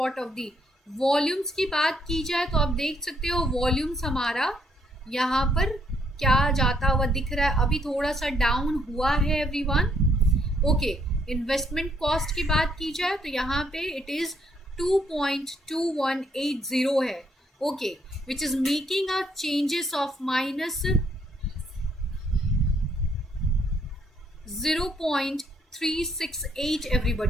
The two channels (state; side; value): normal; both; correlation 0.70